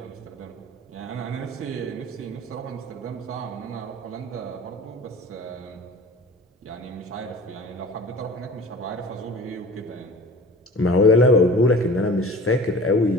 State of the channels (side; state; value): both; normal; correlation 0.41